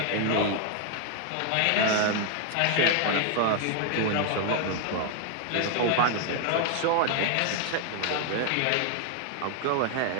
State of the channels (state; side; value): different; both; correlation 0.01